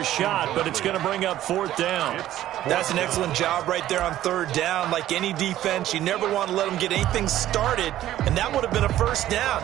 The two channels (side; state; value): left; quieter; 13.3 dB